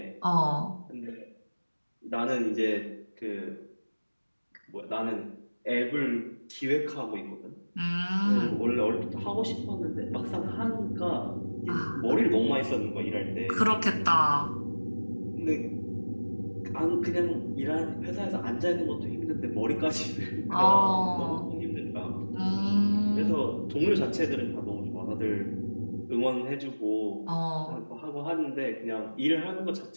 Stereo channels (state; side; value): inverted; both; correlation -1.00